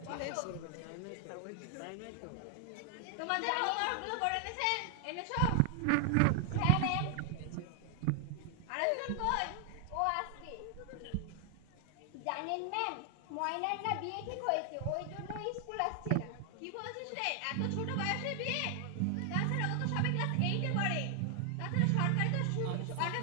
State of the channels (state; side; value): different; both; correlation 0.00